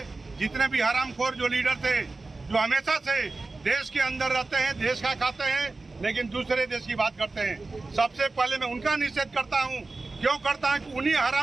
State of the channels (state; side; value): quieter; left; 3.5 dB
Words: जितने भी हरामखोर जो लीडर थे, जो हमेशा से देश के अंदर रहते हैं, देश का खाते हैं, लेकिन दूसरे देश की बात करते हैं, सबसे पहले मैं उनका निषेध करता हूँ। क्यों करता है कि उन्हीं